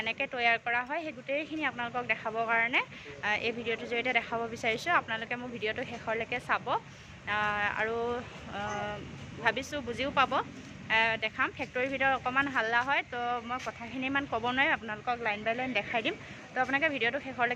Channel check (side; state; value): both; identical; correlation 1.00